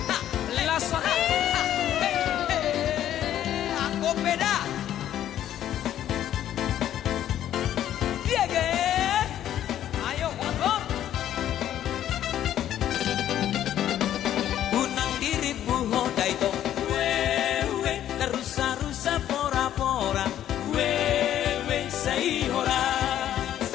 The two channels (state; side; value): quieter; right; 11.4 dB